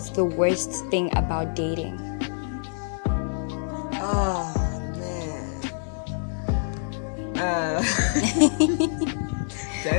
the worst thing about dating? Oh man. Do I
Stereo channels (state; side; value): silent; right; digital silence